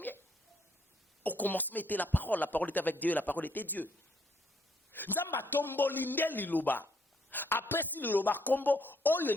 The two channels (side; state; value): both; normal; correlation 0.70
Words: Au commencement était la parole était avec Dieu, la parole était Dieu. Nzamba tomboli nde liloba. Après si liloba kombo, oyo